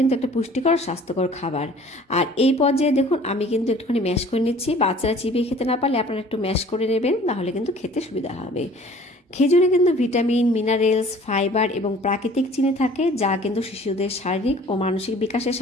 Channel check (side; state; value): both; normal; correlation 0.50